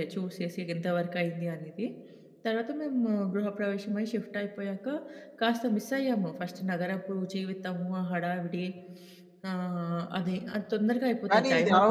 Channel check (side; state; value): both; identical; correlation 1.00